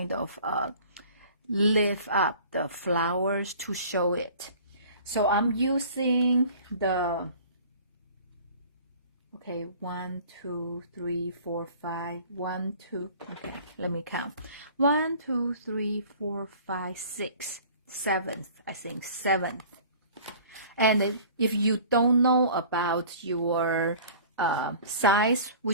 of lift up the flowers to show it. So I'm using the, okay, 1, 2, 3, 4, 5, 1, 2, okay, let me count. 1, 2, 3, 4, 5, 6, 7th, I think 7th. And if you don't know about your size,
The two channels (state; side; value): inverted; both; correlation -0.46